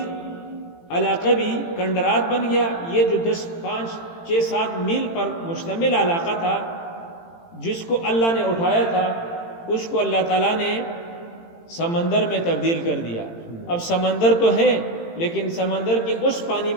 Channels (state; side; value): late; right; 18 ms